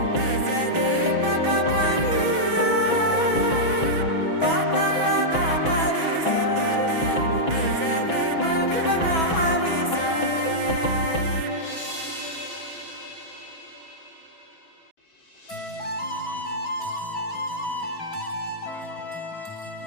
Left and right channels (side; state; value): right; late; 6.2 ms